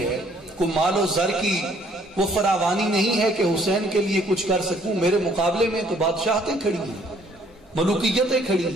کوئی مال و زر کی وہ فراوانی نہیں ہے کہ حسین کے لیے کچھ کر سکوں. میرے مقابلے میں تو بادشاہتیں کھڑی ہیں، ملوکیتیں کھڑی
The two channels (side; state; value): both; normal; correlation 0.62